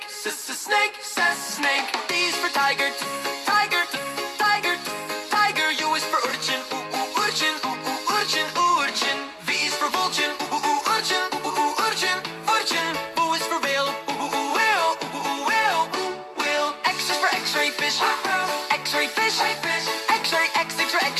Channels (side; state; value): both; identical; correlation 1.00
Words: snake, snake, snake. T is for tiger, tiger, tiger, tiger. U is for urchin, urchin, urchin, urchin. V is for vulture, urchin, urchin, urchin. W is for whale, whale, whale, whale. X is for X-ray fish, X-ray fish, X-ray, X is for